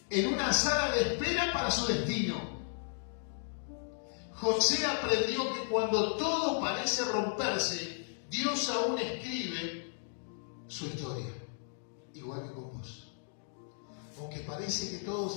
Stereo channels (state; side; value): silent; right; digital silence